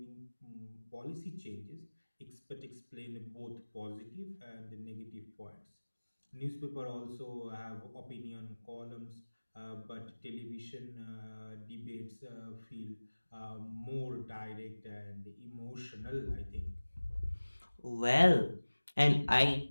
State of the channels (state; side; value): inverted; both; correlation -1.00